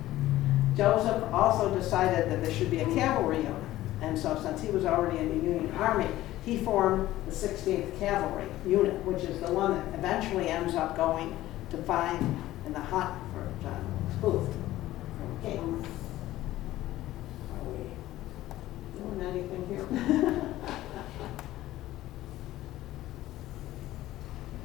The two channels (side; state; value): right; quieter; 15.4 dB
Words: Joseph also decided that there should be a cavalry unit. And so since he was already in the Union Army, he formed the 16th Cavalry Unit, which is the one that eventually ends up going to fight in the hunt for John Wilkes Booth from King. Are we doing anything here?